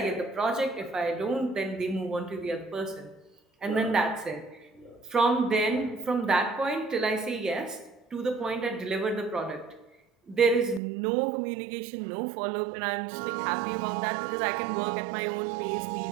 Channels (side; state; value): left; drops out; at 10.8 s